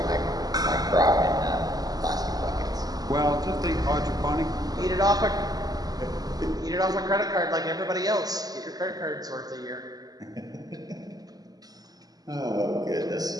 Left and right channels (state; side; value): late; left; 0.18 ms